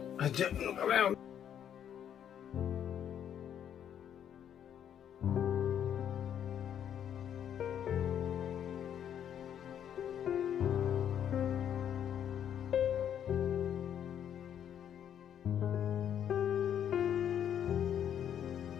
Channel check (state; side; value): quieter; right; 9.4 dB